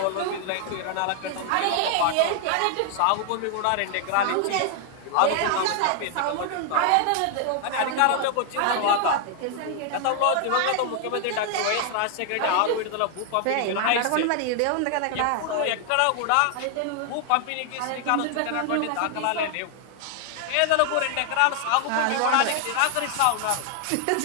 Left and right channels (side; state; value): both; different; correlation 0.00